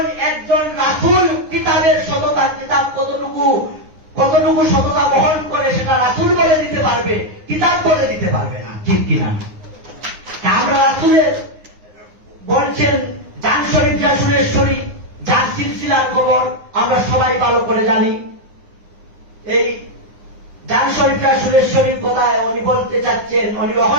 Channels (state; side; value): late; left; 9.7 ms